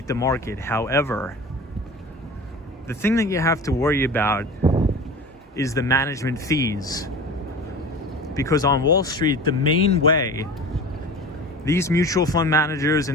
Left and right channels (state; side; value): normal; both; correlation 0.36